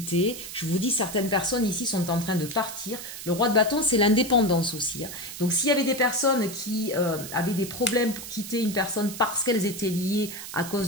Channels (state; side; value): noise; right; hiss, 10 dB below the sound